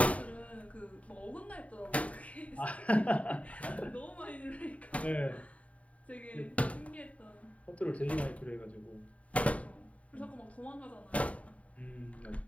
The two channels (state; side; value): late; right; 0.067 ms